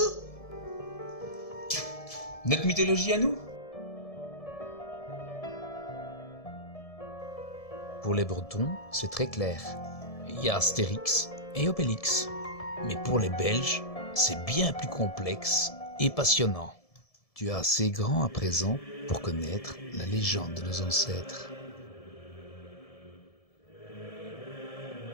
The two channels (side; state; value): right; late; 1.7 ms